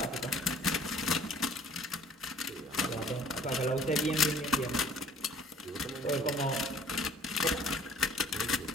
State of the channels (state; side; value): normal; both; correlation 0.53